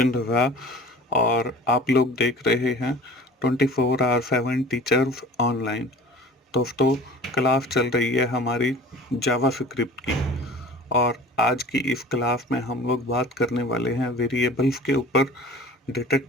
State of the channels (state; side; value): normal; both; correlation 0.43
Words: रज़ा और आप लोग देख रहे हैं 24/7 टीचर्स ऑनलाइन। दोस्तों, क्लास चल रही है हमारी जावा स्क्रिप्ट की और आज की इस क्लास में हम लोग बात करने वाले हैं वेरिएबल्स के ऊपर, डेटा